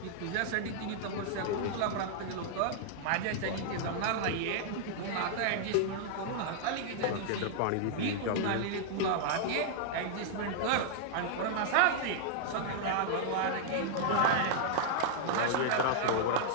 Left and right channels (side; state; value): both; different; correlation -0.01